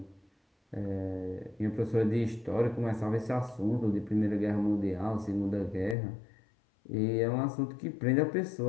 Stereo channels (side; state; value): right; drops out; at 6.0 s